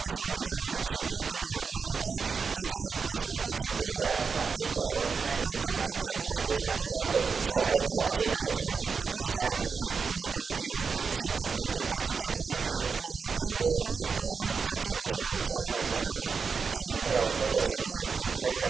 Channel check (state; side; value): quieter; left; 5.4 dB